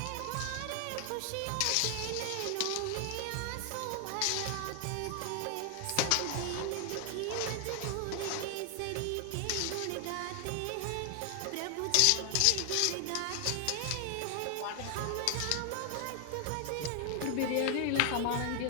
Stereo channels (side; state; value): both; different; correlation 0.00